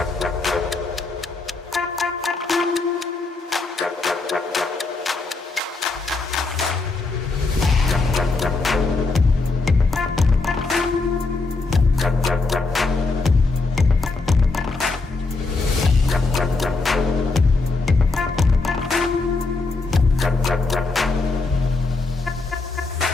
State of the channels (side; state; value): right; quieter; 3.7 dB